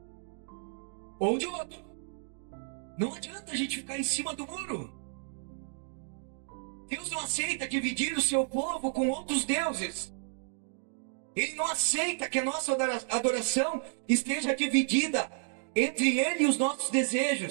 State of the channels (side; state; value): left; silent; 57 dB below the other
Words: ou de outro. Não adianta a gente ficar em cima do muro. Deus não aceita dividir o seu povo com outros deuses. Ele não aceita que a nossa adoração esteja dividida entre Ele e os nossos